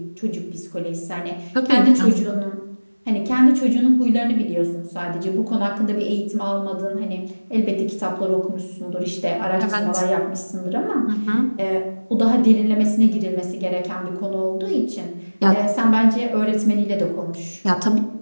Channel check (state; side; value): inverted; both; correlation -1.00